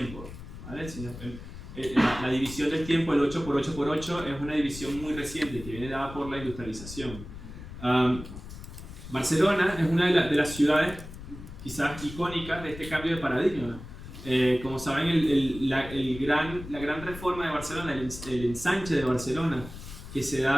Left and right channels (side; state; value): left; noise; rumble, 13 dB below the sound